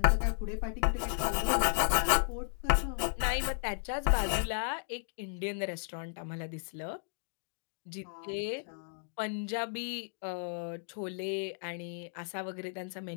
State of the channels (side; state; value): right; silent; digital silence